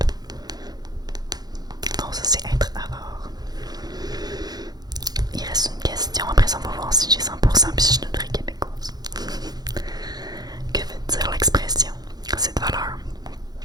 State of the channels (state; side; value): late; left; 0.19 ms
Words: Donc, ça, c'est être avare. Il reste une question. Après ça, on va voir si j'ai 100% puis si je suis une vraie québécoise. Que veut dire l'expression? Cette valeur.